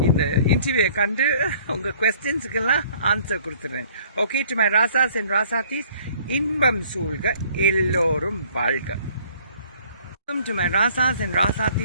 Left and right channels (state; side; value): inverted; both; correlation -0.56